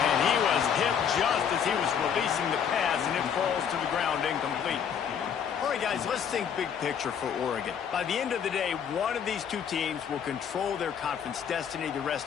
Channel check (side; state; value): right; quieter; 7.9 dB